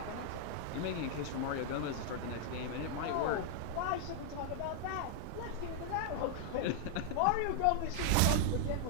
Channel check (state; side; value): different; both; correlation 0.00